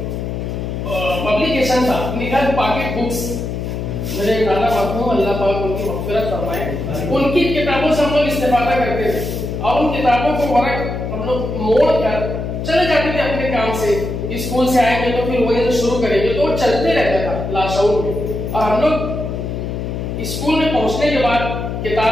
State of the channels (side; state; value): left; noise; hum, 4 dB below the sound